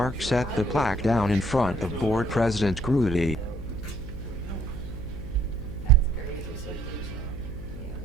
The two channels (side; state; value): left; noise; hum, 11 dB below the sound